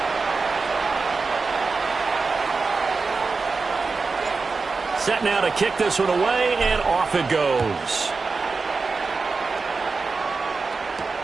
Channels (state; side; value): quieter; left; 4.3 dB